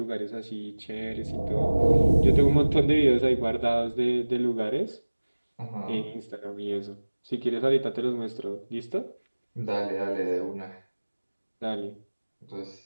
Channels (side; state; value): both; inverted; correlation -1.00